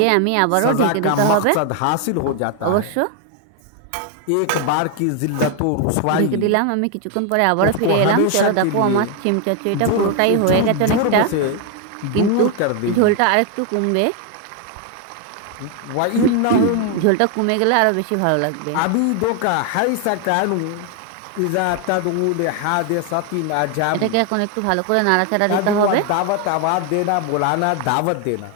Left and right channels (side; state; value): both; different; correlation 0.01